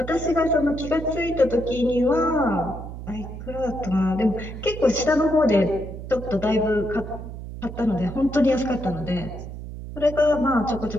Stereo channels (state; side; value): noise; right; hum, 10 dB below the sound